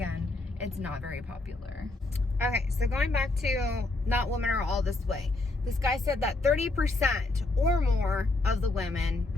it's not very popular. Okay, so going back to not women are all this way. This guy said that 30% or more of the women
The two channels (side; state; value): right; quieter; 3.1 dB